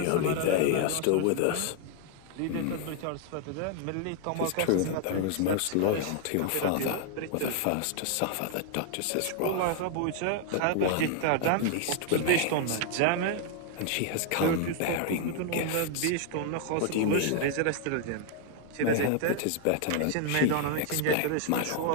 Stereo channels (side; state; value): both; different; correlation 0.00